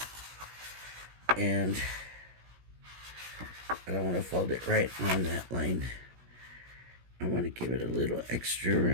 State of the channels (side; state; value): left; late; 17 ms